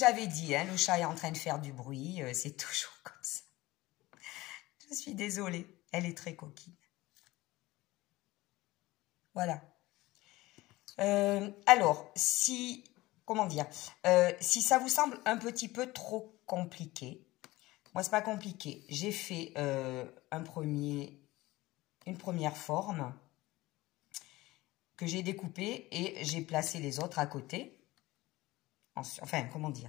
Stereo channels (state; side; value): quieter; right; 19.1 dB